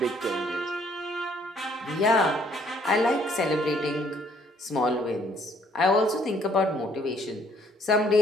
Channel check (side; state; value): both; normal; correlation 0.64